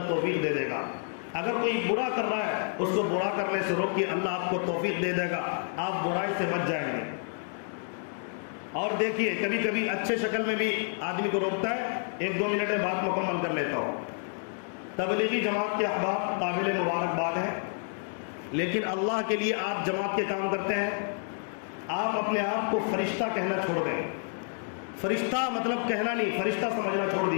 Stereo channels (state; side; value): silent; right; 56 dB below the other